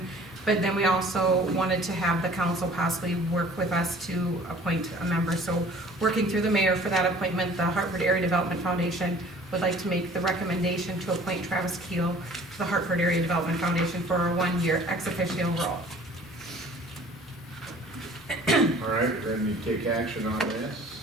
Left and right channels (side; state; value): both; normal; correlation 0.50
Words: but then we also wanted to have the council possibly work with us to appoint a member. So working through the mayor for that appointment, the Hartford Area Development Foundation would like to make the recommendation to appoint Travis Keel to the Hartford Area Development Foundation for a 1-year ex officio role. All right, we're going to take action on